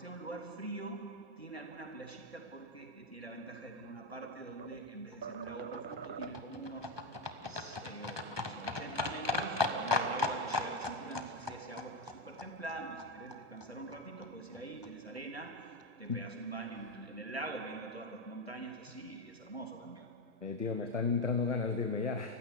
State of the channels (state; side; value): late; left; 1.2 ms